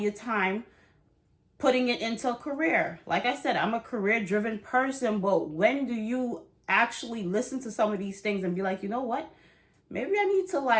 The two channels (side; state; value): both; identical; correlation 1.00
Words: time putting it into a career. Like I said, I'm a career-driven person, but when do you actually listen to some of these things and be like, you know what? Maybe I need to